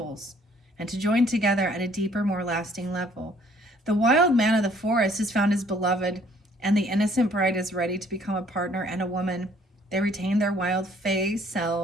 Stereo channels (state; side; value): normal; both; correlation 0.61